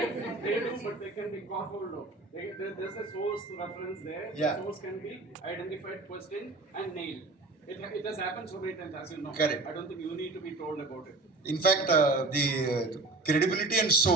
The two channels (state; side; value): quieter; left; 3.2 dB